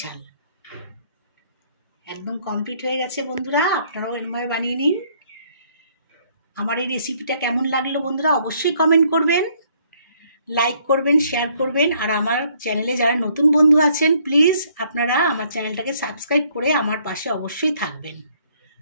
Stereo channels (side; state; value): both; inverted; correlation -0.65